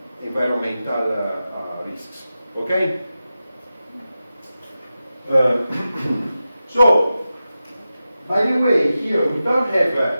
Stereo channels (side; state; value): both; inverted; correlation -0.93